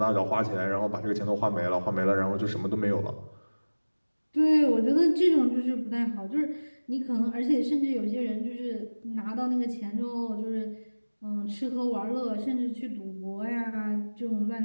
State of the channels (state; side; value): inverted; both; correlation -1.00